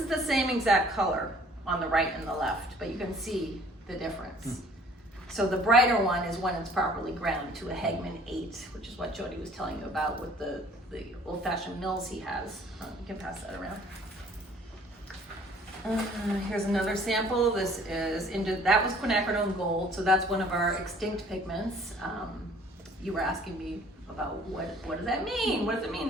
the same exact color on the right and the left, but you can see the difference. So the brighter one is when it's properly ground to a Hegman 8, which is what Jody was telling you about with the old-fashioned mills he has. You can pass that around. Here's another sample. This is that was quinacridone gold, so that's one of our extinct pigments. You were asking me about what does that mean? What does it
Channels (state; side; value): normal; both; correlation 0.55